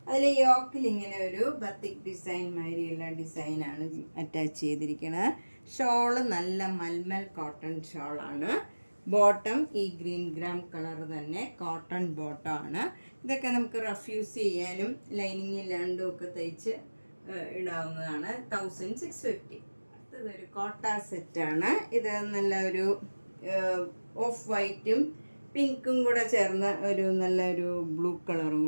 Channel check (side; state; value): both; inverted; correlation -1.00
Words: അതിൽ യോക്കിൽ ഇങ്ങനെ ഒരു ബത്തിക് ഡിസൈൻ മാതിരിയുള്ള ഡിസൈനാണ് അറ്റാച്ച് ചെയ്തിരിക്കുന്നത്. ഷോള് നല്ല മൽമൽ കോട്ടൺ ഷോളാണ്. ബോട്ടം ഈ ഗ്രീൻ ഗ്രാം കളർ തന്നെ കോട്ടൺ ബോട്ടമാണ്. ഇതൊക്കെ നമുക്ക് റഫ് യൂസ് ചെയ്യാനും ലൈനിങ് ഇല്ലാണ്ടും ഒക്കെ തയ്ച്ച് ഇടാവുന്നതാണ്. 1650. അടുത്തതൊരു കോട്ട സെറ്റാണ്. ഇത് നല്ല ഒരു ഓഫ് വൈറ്റും പിങ്കും കൂടെ ചേർന്ന ഒരു നല്ലൊരു ബ്ലൂ കളറും